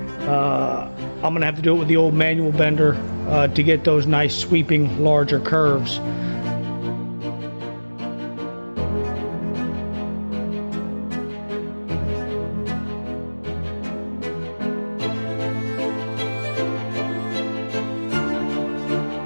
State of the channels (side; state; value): both; inverted; correlation -1.00